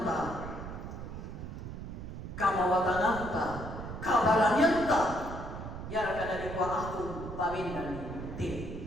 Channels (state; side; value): noise; right; rumble, 8 dB below the sound